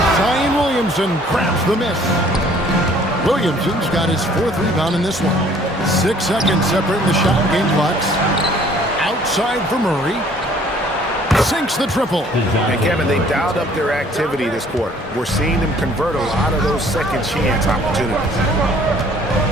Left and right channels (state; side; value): normal; both; correlation 0.57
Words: Zion Williamson grabs the miss. Williamson's got his 4th rebound in this one. 6 seconds separating the shot and game clocks. Outside for Murray. Sinks the triple. And Kevin, they dialed up their activity this quarter. We're seeing them convert a lot of those second chance opportunities.